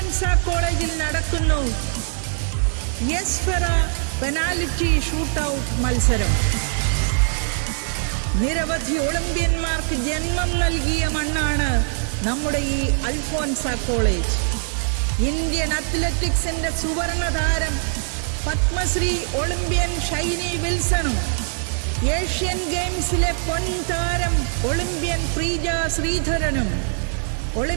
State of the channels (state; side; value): silent; left; digital silence